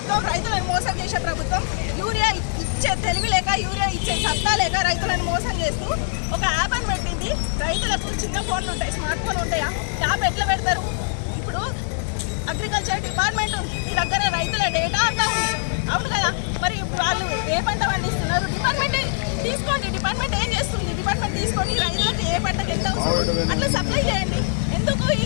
ప్రభుత్వం రైతులను మోసం చేసే ప్రభుత్వం. యూరియా ఇచ్చే తెలివి లేక, యూరియా ఇచ్చే సత్తా లేక రైతులను మోసం చేస్తూ ఒక యాప్ అని పెట్టింది. రైతులకు చిన్న ఫోన్లు ఉంటాయి, స్మార్ట్ ఫోన్ ఉంటాయా? యాప్ ఎట్లా పెడతారు? ఇప్పుడు అగ్రికల్చర్ డిపార్ట్మెంట్ ఉంది, మీ దగ్గర రైతుల డేటా అంతా ఉంది, అవును కదా? మరి వాళ్ళు ఏ పంట పండిస్తున్నారు? డిపార్ట్మెంట్ తీసుకోండి. డిపార్ట్మెంట్ ఏం చేస్తుంది? డిపార్ట్మెంట్ తీసుకొని రైతులకు ఏ పంటకు ఎంత అవసరం అట్లా సప్లై చేయండి. ఎందుకు ఈ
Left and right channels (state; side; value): silent; right; 64 dB below the other